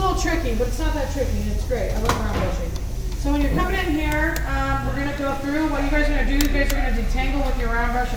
tricky, but it's not that tricky. It's great. I love round brushing. So when you're coming in here, we're going to go through. What you guys are going to do, you guys are going to detangle with your round brush a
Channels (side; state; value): both; identical; correlation 1.00